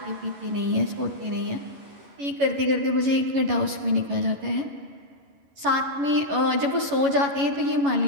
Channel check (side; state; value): left; late; 11 ms